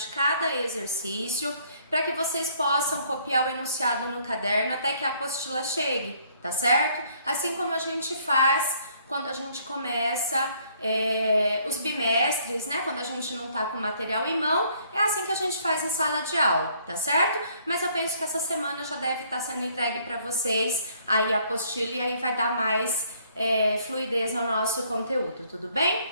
cada exercício para que vocês possam copiar o enunciado no caderno até que a apostila chegue, tá certo? Assim como a gente faz quando a gente começa os bimestres, né? Quando a gente não tá com o material em mão, é assim que a gente faz em sala de aula, tá certo? Mas eu penso que essa semana já deve estar sendo entregue para vocês aí a apostila e aí vai dar mais fluidez no nosso conteúdo, tudo bem?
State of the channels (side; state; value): both; inverted; correlation -0.63